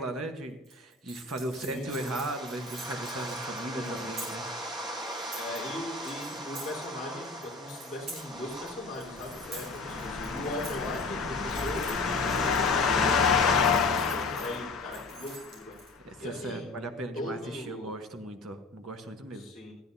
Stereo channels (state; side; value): quieter; right; 3.4 dB